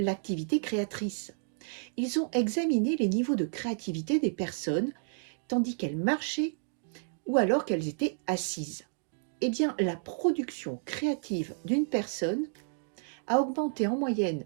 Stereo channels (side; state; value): left; silent; digital silence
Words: créatrice. Ils ont examiné les niveaux de créativité des personnes tandis qu'elles marchaient ou alors qu'elles étaient assises. La production créative d'une personne a augmenté en moyenne